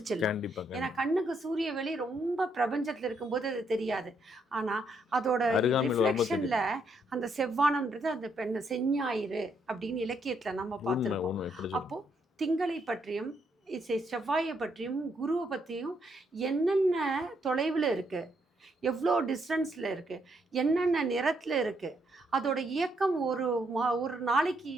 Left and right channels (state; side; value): normal; both; correlation 0.75